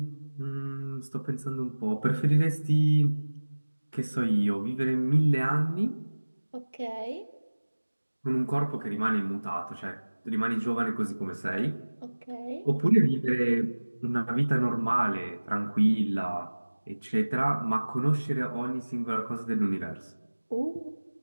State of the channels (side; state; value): both; inverted; correlation -1.00